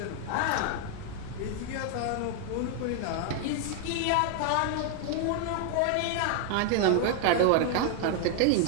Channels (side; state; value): both; different; correlation 0.00